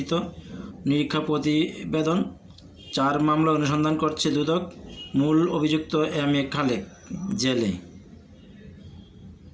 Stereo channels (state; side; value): identical; both; correlation 1.00